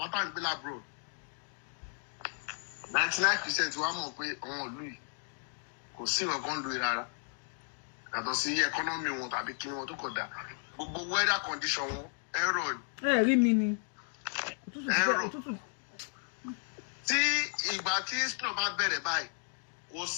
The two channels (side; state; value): right; silent; 55 dB below the other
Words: tá à ń gbé lábúrò 99% wa mọ̀ pé àwọn ìlú yìí kò sí nǹkan lu rárá yàtọ̀ sí ẹkọ́nọ́mì wọn tàbí kí wọn tó kọ̀ dá gbogbo weather condition wọn ẹ̀rọ ni. Ẹ rí mi ni òtútù. Tí ìgbà tí snow bá bẹ̀rẹ̀ báyìí kò